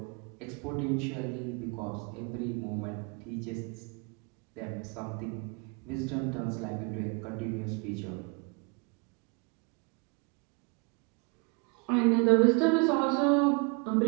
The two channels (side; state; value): left; quieter; 32.6 dB